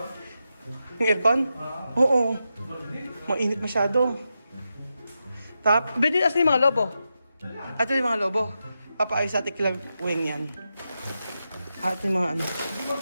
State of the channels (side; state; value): both; inverted; correlation -0.88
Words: Yung aircon? Oo. Mainit masyado. Pwede asan yung mga lobo? Ito yung mga lobo. Papaayos sa Ate Weng yan. Ate yung mga ano.